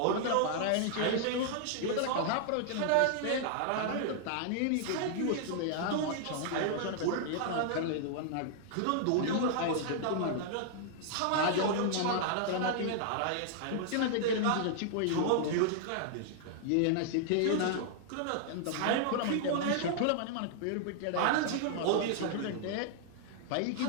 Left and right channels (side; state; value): both; different; correlation -0.01